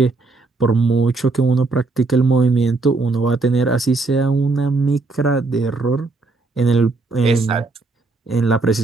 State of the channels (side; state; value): left; quieter; 3.6 dB